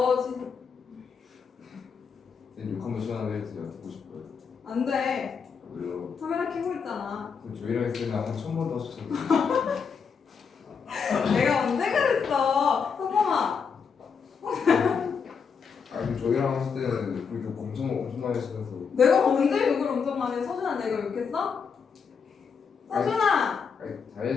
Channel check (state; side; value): quieter; right; 6.1 dB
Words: 지금 쌤 욕 한번 시원하게 해주세요. 듣고 싶어요. 안 돼. 왜요? 카메라 켜고 있잖아. 그럼 저희랑 했으면 한 1000번 더 하셨잖아요. 내가 언제 그랬어? 성범아. 아니 저희랑 하실 때는 그 욕 엄청 많이 하시면서 내가 언제 욕을 엄청 많이 해? 서준아 내가 욕했어? 서준아. 아니